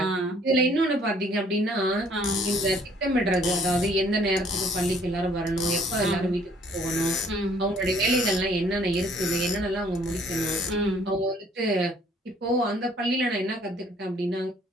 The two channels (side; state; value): both; normal; correlation 0.60